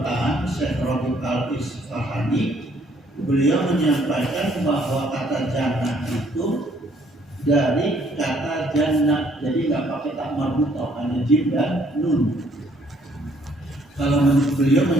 Syekh Rabi' Al-Isfahani, beliau menyampaikan bahwa kata jannah itu dari kata jannah, jadi nggak pakai tak marbutah, hanya jim dan nun. Kalau beliau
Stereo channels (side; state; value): both; normal; correlation 0.65